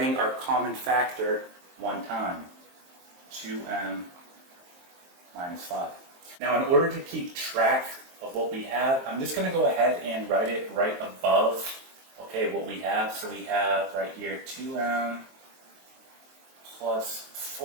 our common factor one time. 2m minus 5. Now, in order to keep track of what we have, I'm just going to go ahead and write it right above, okay, what we have. So we have right here 2m plus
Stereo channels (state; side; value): late; left; 23 ms